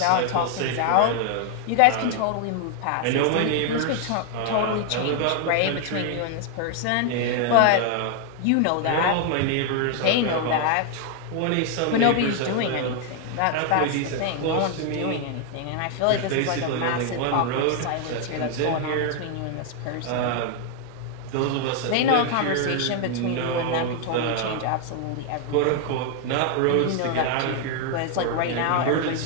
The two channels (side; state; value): both; different; correlation 0.00